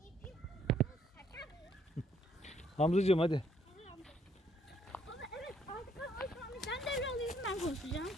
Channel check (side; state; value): both; normal; correlation 0.67